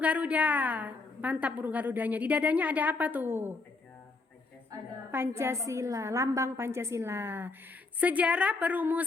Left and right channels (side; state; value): right; quieter; 3.7 dB